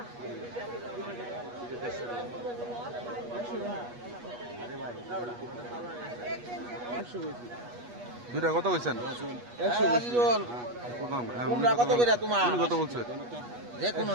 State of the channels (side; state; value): left; late; 8.3 ms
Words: দুইটা কত কইছেন? 100 কত করে তোমার কত বলছে? যে কোন